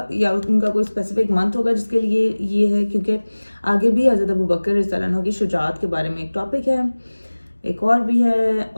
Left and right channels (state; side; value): inverted; both; correlation -1.00